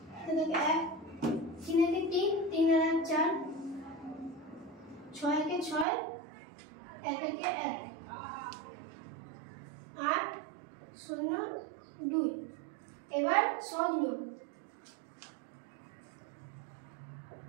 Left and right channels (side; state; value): left; drops out; at 5.9 s